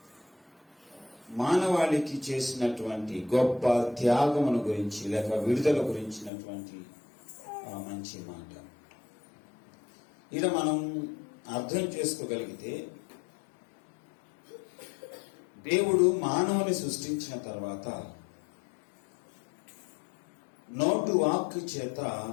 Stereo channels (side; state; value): right; drops out; at 6.3 s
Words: మానవాళికి చేసినటువంటి గొప్ప త్యాగమును గురించి లేక విడుదల గురించినటువంటి మంచి మాట ఇలా మనం అర్థం చేసుకోగలిగితే, దేవుడు మానవుని సృష్టించిన తర్వాత నోటు వాక్కు చేత